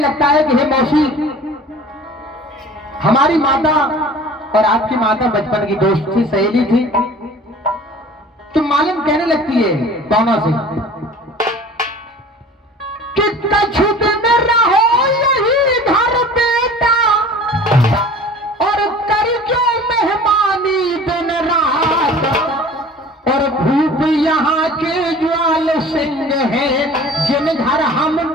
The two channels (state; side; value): normal; both; correlation 0.44